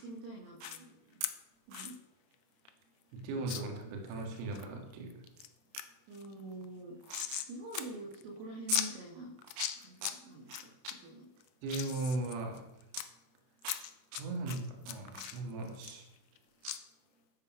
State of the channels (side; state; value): left; late; 31 ms